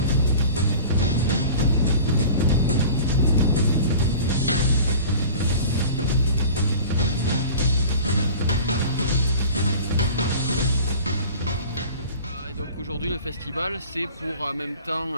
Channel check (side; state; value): both; inverted; correlation -0.40